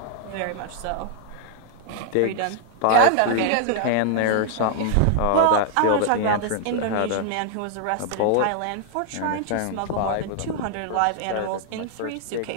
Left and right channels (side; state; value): both; different; correlation -0.01